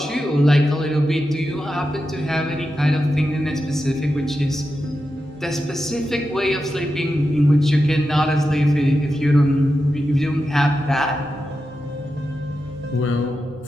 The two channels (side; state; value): both; normal; correlation 0.89